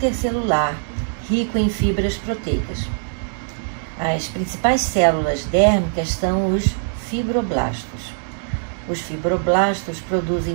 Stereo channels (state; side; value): silent; left; digital silence